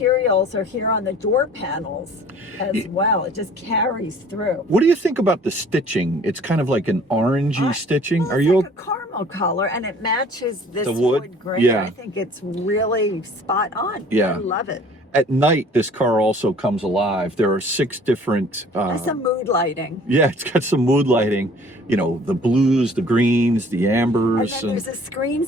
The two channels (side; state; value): both; normal; correlation 0.51